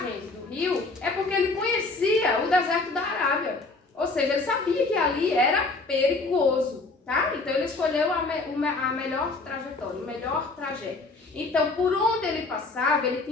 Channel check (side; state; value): right; quieter; 3.5 dB